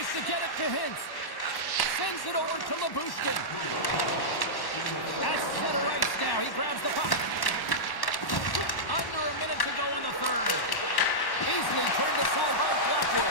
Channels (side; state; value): right; late; 1.1 ms